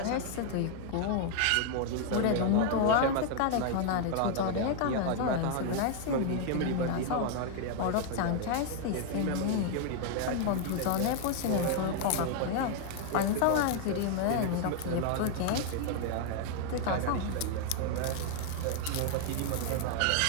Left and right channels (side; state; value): both; different; correlation 0.00